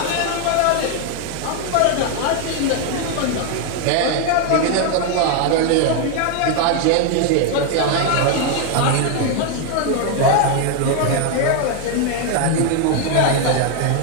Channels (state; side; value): different; both; correlation 0.01